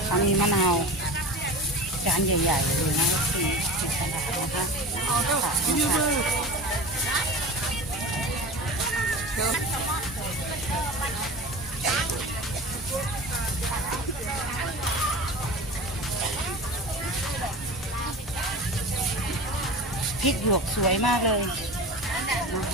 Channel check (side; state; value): both; normal; correlation 0.33